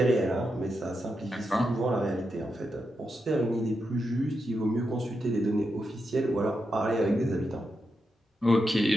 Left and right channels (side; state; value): both; normal; correlation 0.86